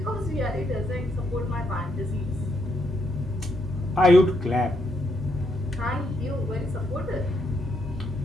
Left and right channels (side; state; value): both; normal; correlation 0.76